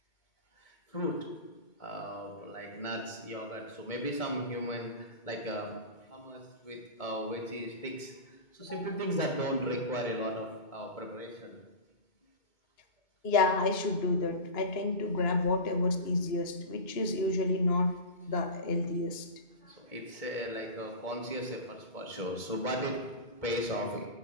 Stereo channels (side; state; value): right; late; 2.2 ms